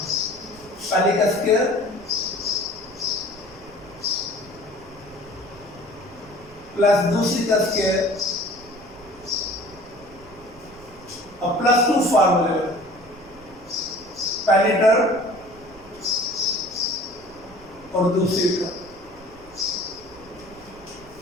पहले का स्क्वायर प्लस दूसरी का स्क्वायर, अब +2 फार्मूले, पहली टर्म और दूसरी टर्म,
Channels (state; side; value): noise; right; rumble, 23 dB below the sound